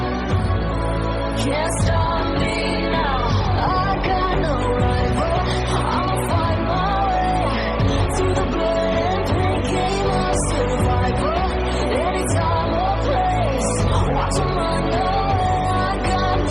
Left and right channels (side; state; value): both; identical; correlation 1.00